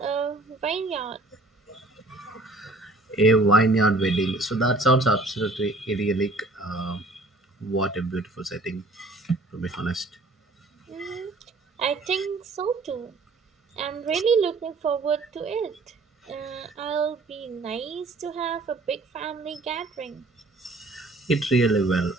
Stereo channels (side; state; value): left; quieter; 3.0 dB